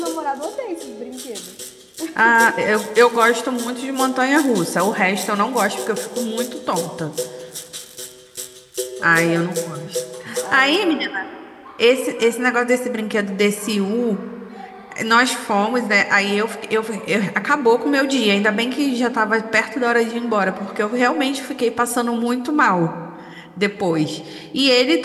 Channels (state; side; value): identical; both; correlation 1.00